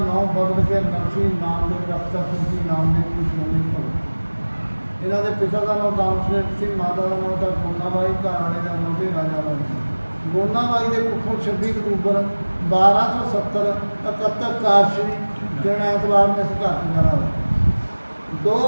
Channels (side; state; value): both; inverted; correlation -1.00